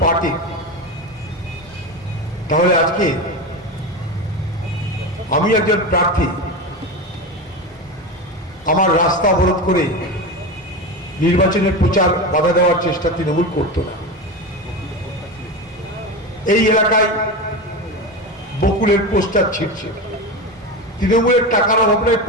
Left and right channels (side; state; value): both; normal; correlation 0.22